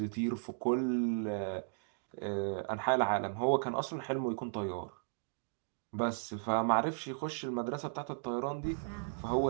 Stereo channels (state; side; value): silent; left; digital silence